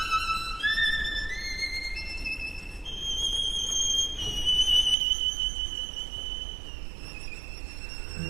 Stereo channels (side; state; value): left; drops out; at 5.0 s